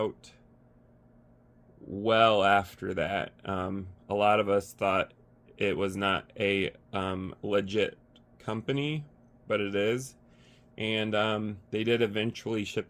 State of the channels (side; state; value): both; identical; correlation 1.00